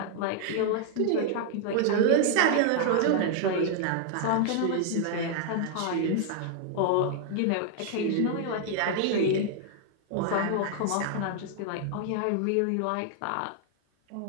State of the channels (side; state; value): both; different; correlation 0.00